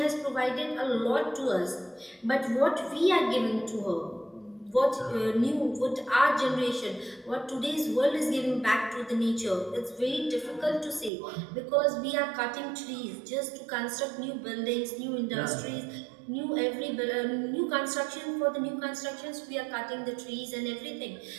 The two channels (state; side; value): drops out; left; at 11.1 s